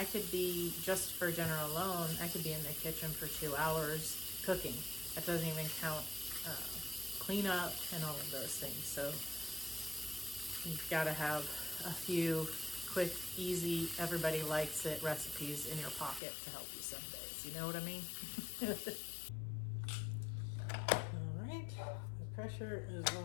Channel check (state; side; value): drops out; right; at 16.2 s